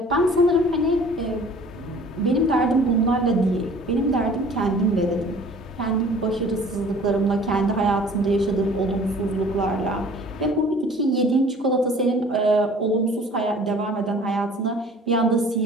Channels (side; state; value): both; normal; correlation 0.49